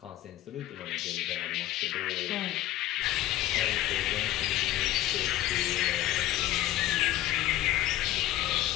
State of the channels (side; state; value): right; quieter; 14.4 dB